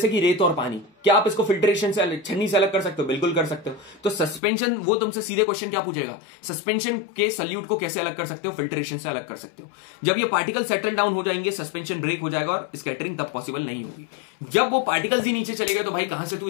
कि रेत और पानी, क्या आप इसको फिल्ट्रेशन से छन्नी से अलग कर सकते हो, बिल्कुल कर सकते हो। तो सस्पेंशन, वो तुमसे सीधे क्वेश्चन क्या पूछेगा, सस्पेंशन के सल्यूट को कैसे अलग कर सकते हो, फिल्ट्रेशन से अलग कर सकते हो। जब ये पार्टिकल सेटल डाउन हो जाएंगे, सस्पेंशन ब्रेक हो जाएगा और स्कैटरिंग तब पॉसिबल नहीं होगी। जब वो पार्टिकल्स ही नीचे चले गए तो भाई कहां से तू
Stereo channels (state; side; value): drops out; right; at 4.4 s